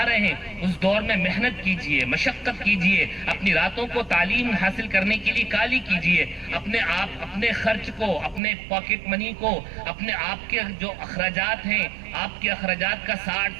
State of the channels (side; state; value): left; drops out; at 8.4 s